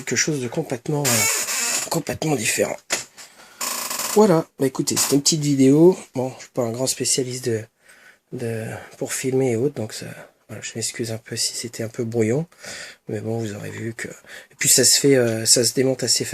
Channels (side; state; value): both; identical; correlation 1.00